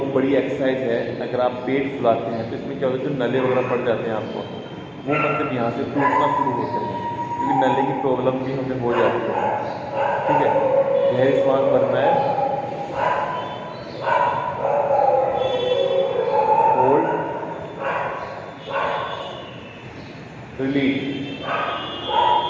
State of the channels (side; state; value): both; identical; correlation 1.00